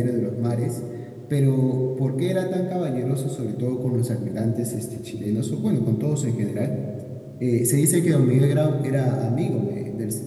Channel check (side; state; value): both; identical; correlation 1.00